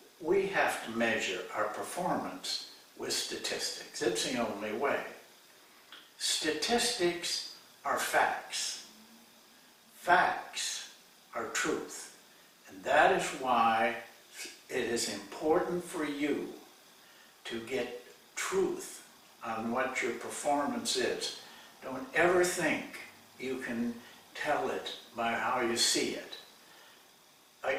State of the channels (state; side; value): identical; both; correlation 1.00